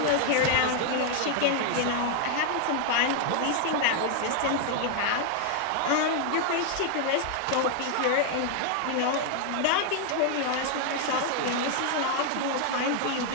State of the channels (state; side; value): different; both; correlation 0.00